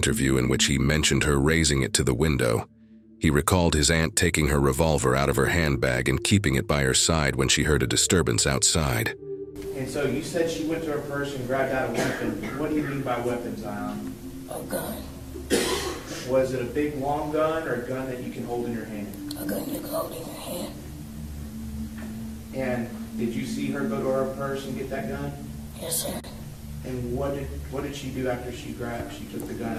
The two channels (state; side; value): identical; both; correlation 1.00